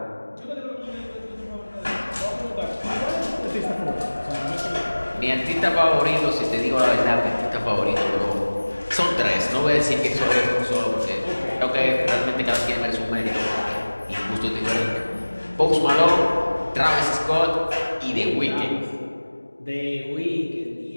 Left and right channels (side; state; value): both; inverted; correlation -1.00